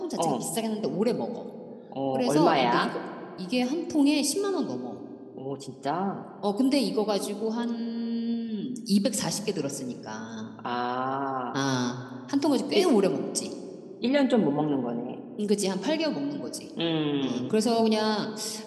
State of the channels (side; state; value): both; identical; correlation 1.00